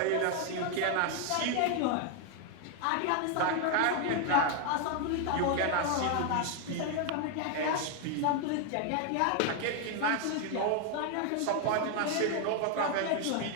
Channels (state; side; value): different; both; correlation 0.01